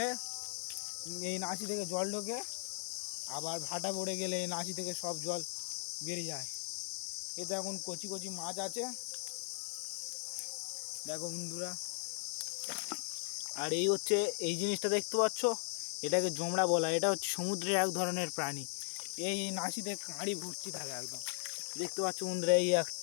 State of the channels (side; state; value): right; silent; 53 dB below the other